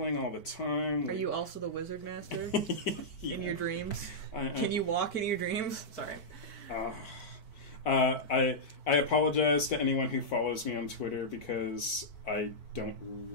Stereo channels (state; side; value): late; right; 4.5 ms